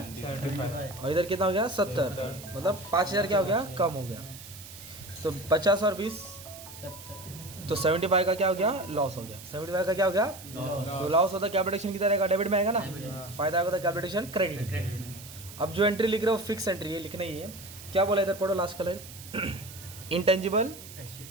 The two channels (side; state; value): right; noise; hiss, 15 dB below the sound